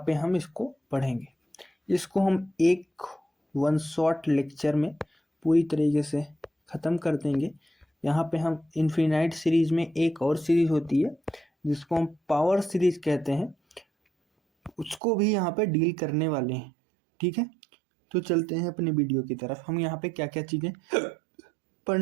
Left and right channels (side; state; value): left; drops out; at 15.0 s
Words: पे हम इसको पढ़ेंगे। इसको हम एक वन शॉट लेक्चर में पूरी तरीके से ख़त्म कर देंगे। यहाँ पे हम इन्फिनाइट सीरीज में एक और सीरीज होती है जिसको हम पावर सीरीज कहते हैं, उसको भी यहाँ पे डील करने वाले हैं। ठीक है, तो चलते हैं अपने वीडियो की तरफ। हम यहाँ पे क्या क्या चीज़ें